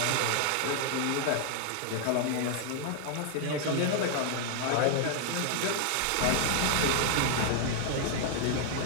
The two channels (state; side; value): different; both; correlation 0.00